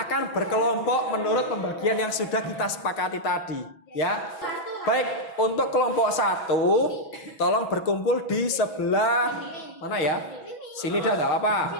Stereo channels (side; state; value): right; late; 6.0 ms